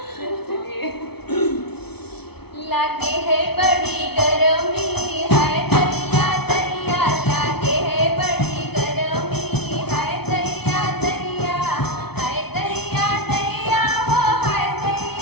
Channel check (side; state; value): right; late; 0.98 ms